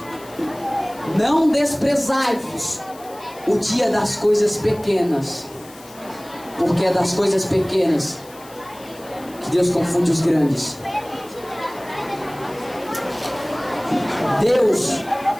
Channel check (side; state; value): left; noise; hiss, 22 dB below the sound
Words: Não desprezai-vos o dia das coisas pequenas, porque é das coisas pequenas que Deus confunde os grandes. Deus